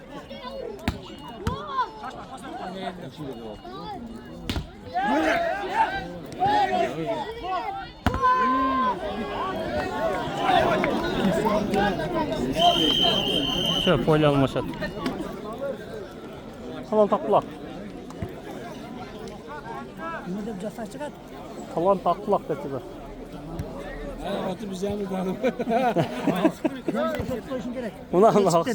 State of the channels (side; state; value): both; identical; correlation 1.00